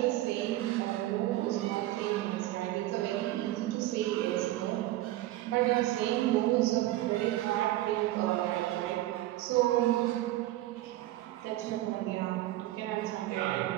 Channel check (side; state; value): left; quieter; 15.8 dB